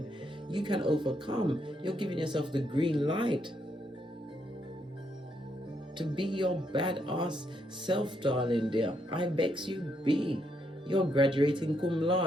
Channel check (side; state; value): both; normal; correlation 0.77